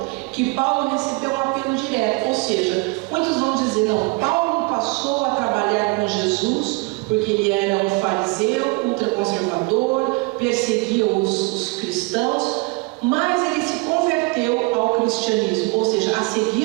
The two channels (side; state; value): left; quieter; 26.8 dB